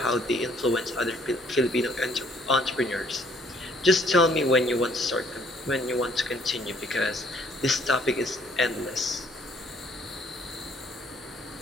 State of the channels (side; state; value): both; normal; correlation 0.62